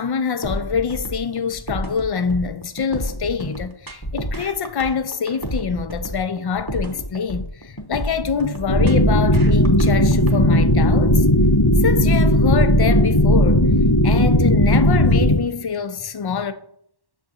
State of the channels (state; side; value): late; right; 1.1 ms